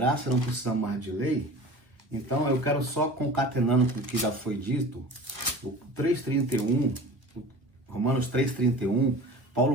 não precisamos mais de lei. Então, eu quero só concatenando com o que já foi dito, o 3,31, Romanos 3,31,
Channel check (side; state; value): left; late; 1.0 ms